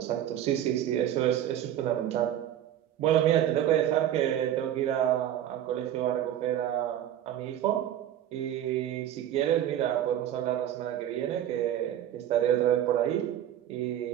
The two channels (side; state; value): left; quieter; 11.3 dB